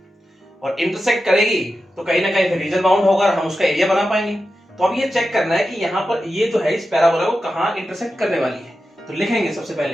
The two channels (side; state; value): both; normal; correlation 0.91